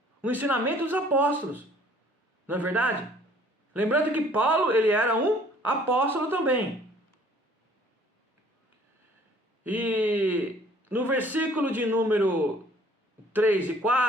O ensinamento dos apóstolos. Não é verdade? Lembrando que Paulo, ele era um apóstolo também. E no versículo de número 3 e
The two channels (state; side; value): normal; both; correlation 0.56